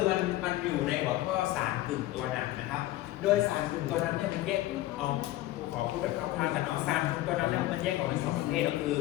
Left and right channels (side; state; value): right; quieter; 15.9 dB